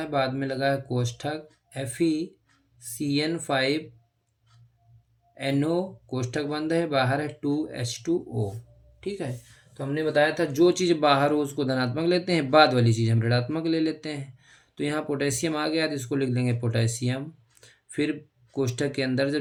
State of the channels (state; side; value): identical; both; correlation 1.00